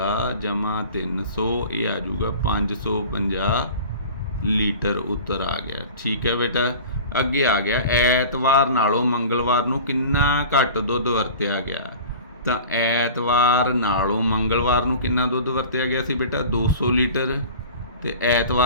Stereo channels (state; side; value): inverted; both; correlation -0.39